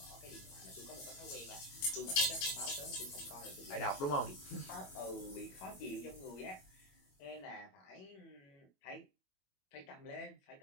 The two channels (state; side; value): late; right; 21 ms